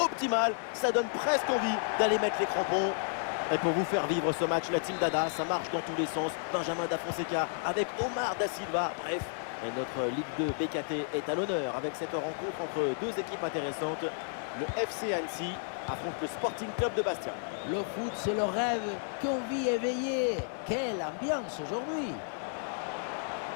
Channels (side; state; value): right; silent; 56 dB below the other